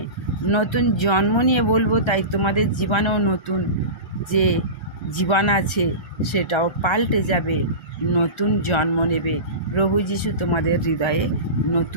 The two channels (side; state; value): right; late; 1.3 ms